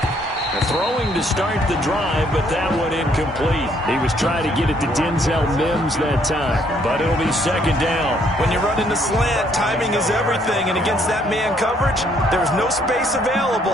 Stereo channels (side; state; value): both; normal; correlation 0.67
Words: Throwing to start the drive, but that one incomplete. He was trying to get it to Denzel Mims that time, but it'll be 2nd down. When you run into slant, timing is everything, and against that man coverage, there was no space available,